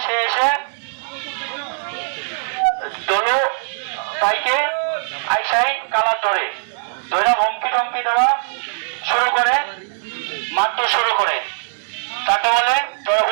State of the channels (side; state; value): left; silent; digital silence